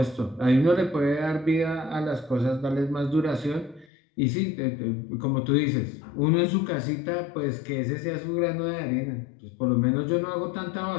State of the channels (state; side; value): drops out; right; at 3.9 s